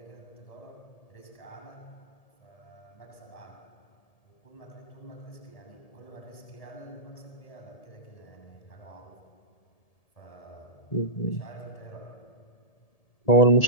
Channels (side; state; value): right; late; 1.7 ms